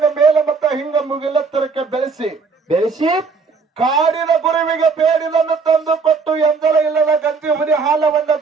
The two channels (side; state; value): left; quieter; 4.8 dB